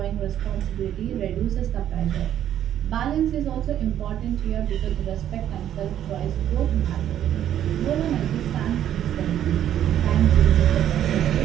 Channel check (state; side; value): quieter; left; 10.9 dB